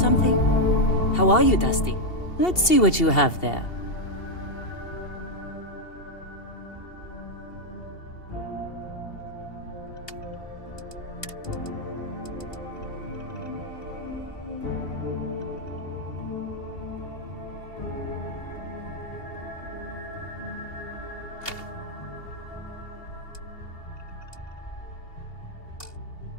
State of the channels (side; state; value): right; late; 2.7 ms